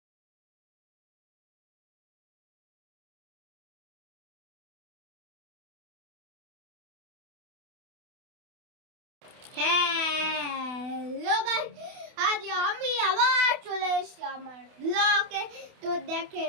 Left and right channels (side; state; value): left; late; 28 ms